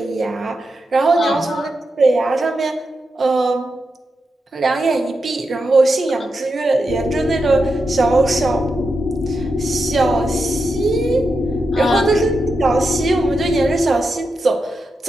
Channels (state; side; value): normal; both; correlation 0.87